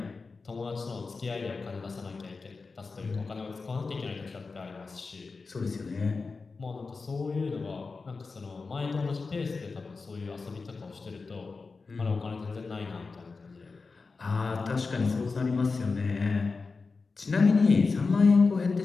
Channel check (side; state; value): right; quieter; 4.3 dB